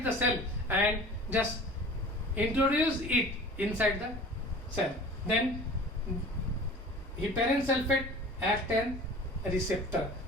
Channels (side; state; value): both; normal; correlation 0.42